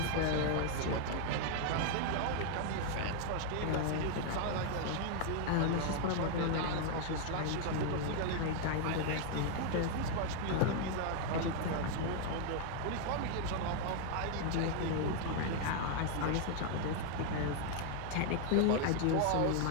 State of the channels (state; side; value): different; both; correlation 0.00